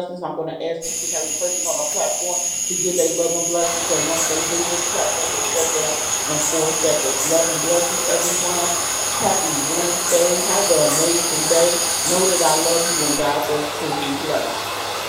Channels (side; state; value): both; identical; correlation 1.00